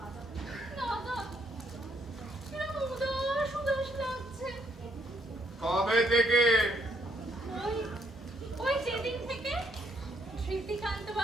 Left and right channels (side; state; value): both; normal; correlation 0.71